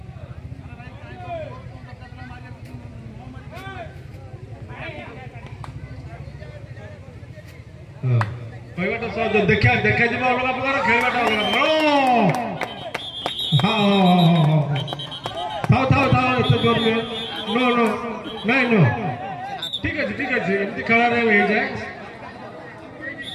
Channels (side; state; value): both; identical; correlation 1.00